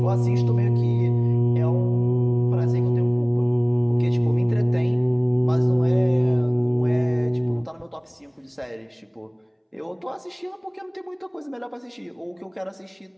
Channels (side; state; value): both; identical; correlation 1.00